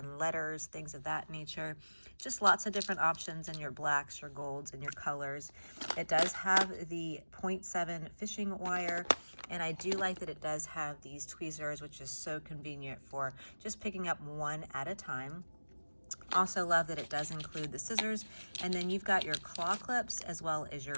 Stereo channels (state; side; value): inverted; both; correlation -1.00